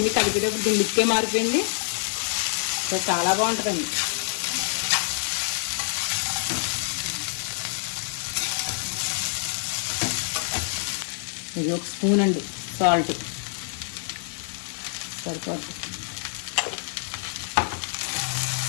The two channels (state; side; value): silent; right; digital silence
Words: కలిపేటప్పుడు దీని లుక్కే మారిపోయింది. చాలా బాగుంటుందండి. ఇది ఒక స్పూన్ అండి సాల్ట్ సరిపోతుంది.